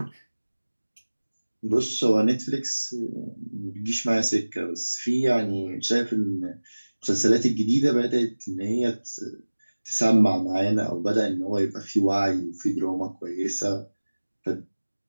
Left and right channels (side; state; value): both; inverted; correlation -1.00